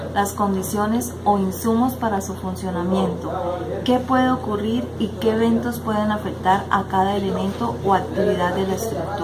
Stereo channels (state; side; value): identical; both; correlation 1.00